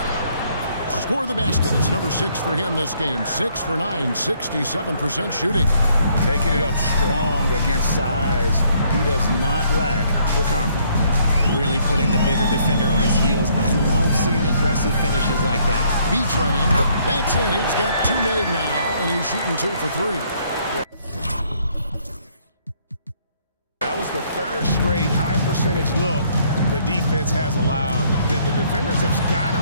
Score the basket. It's number 6 for him this game. 6 for 9, 67% shooting. Taking it up strong against size. He does not lack for confidence. Really putting the bigger defender on his heels. I love seeing aggressive finishes like that. B-Train. That's it. He's got 2 made now, and he's shooting 2 for 3. That was the 3rd straight high percentage look the defense has allowed. The defenders have got to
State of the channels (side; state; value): both; inverted; correlation -0.66